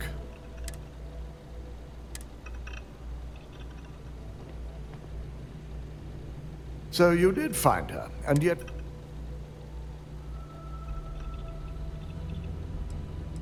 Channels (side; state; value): both; identical; correlation 1.00